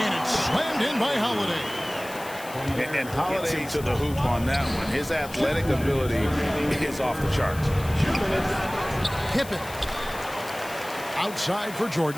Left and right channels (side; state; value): left; noise; hiss, 16 dB below the sound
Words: it's slammed in by Holiday. And Holiday to the hoop on that one. His athletic ability is off the charts. Pippen. Outside for